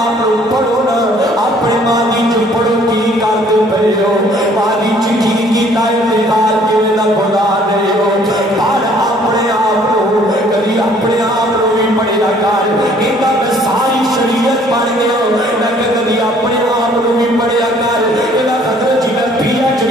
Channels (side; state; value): both; normal; correlation 0.59